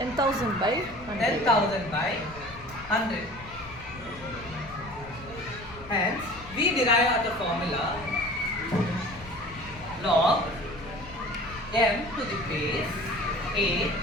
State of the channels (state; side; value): noise; left; rumble, 18 dB below the sound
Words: by 100. 10,000 by 100. Hence, we derive the formula log m to the base a